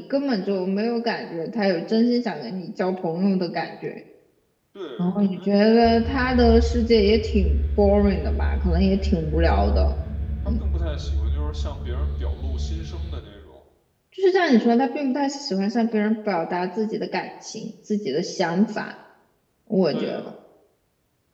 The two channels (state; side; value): identical; both; correlation 1.00